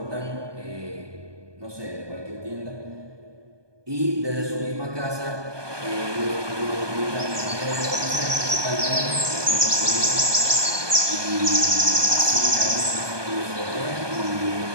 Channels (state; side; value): late; left; 1.2 ms